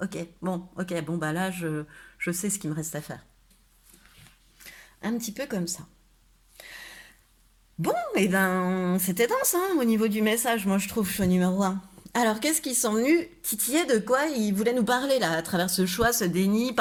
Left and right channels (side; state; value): both; identical; correlation 1.00